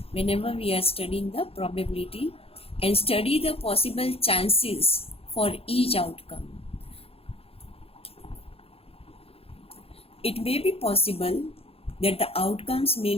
whenever we are studying the probability and study the possible chances for each outcome. It may be possible that the outcomes may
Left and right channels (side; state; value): right; late; 0.28 ms